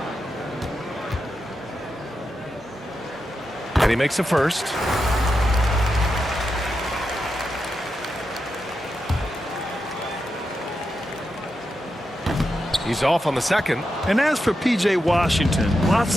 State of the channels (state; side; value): normal; both; correlation 0.87